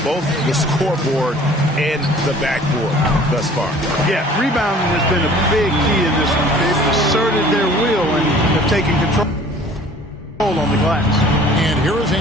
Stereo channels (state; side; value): normal; both; correlation 0.50